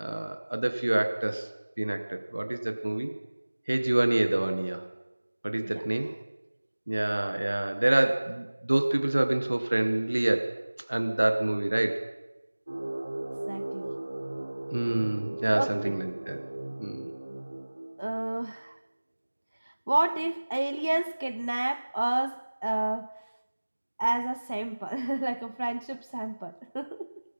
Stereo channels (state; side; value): inverted; both; correlation -1.00